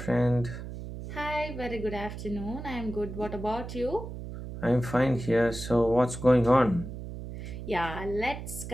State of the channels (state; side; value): noise; right; hum, 9 dB below the sound